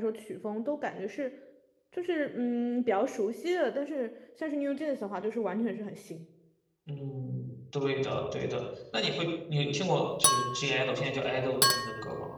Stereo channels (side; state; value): both; identical; correlation 1.00